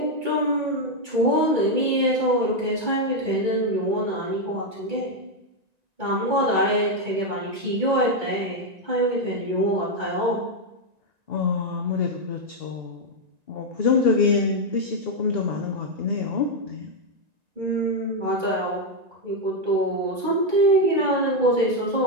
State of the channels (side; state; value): left; late; 1.9 ms